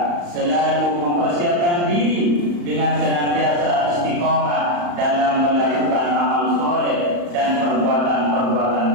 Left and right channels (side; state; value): left; late; 35 ms